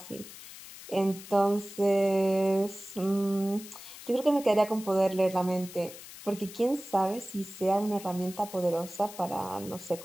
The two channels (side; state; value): left; noise; hiss, 15 dB below the sound